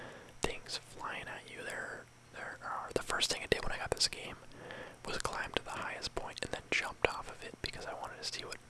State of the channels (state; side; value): identical; both; correlation 1.00